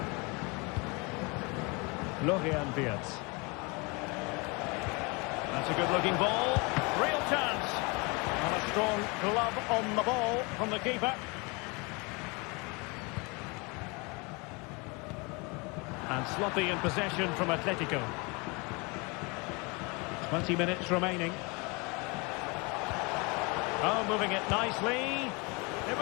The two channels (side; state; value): right; quieter; 28.8 dB